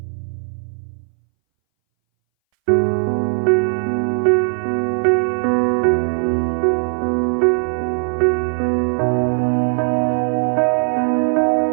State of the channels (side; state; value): left; silent; 63 dB below the other